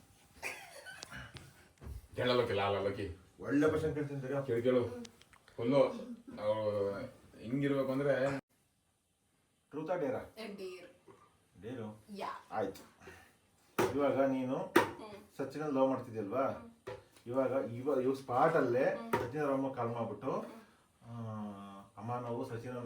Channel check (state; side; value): identical; both; correlation 1.00